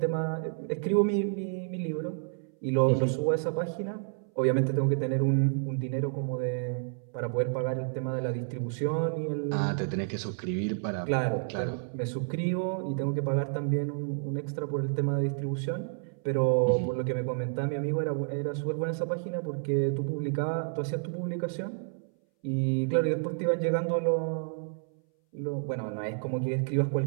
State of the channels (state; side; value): silent; left; 58 dB below the other